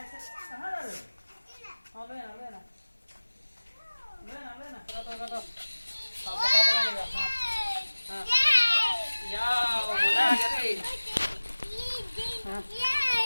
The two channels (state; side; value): inverted; both; correlation -1.00